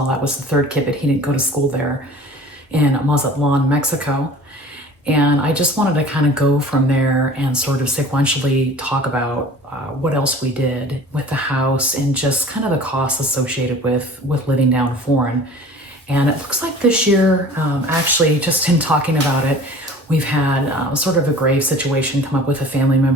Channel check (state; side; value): normal; both; correlation 0.44